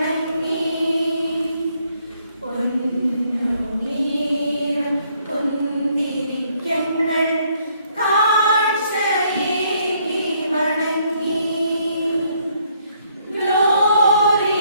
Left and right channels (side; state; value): both; inverted; correlation -0.68